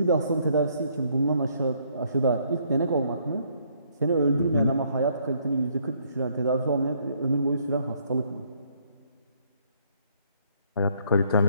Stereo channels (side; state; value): both; inverted; correlation -0.68